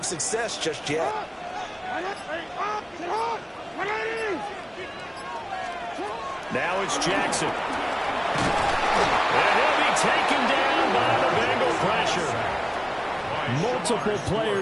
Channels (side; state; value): both; identical; correlation 1.00